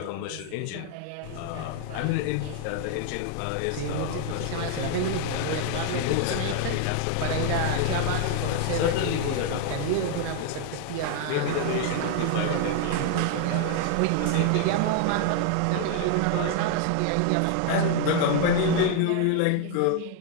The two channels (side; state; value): both; different; correlation 0.00